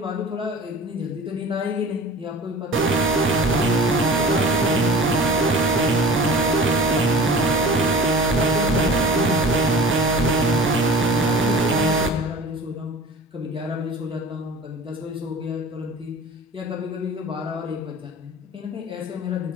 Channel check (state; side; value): normal; both; correlation 0.40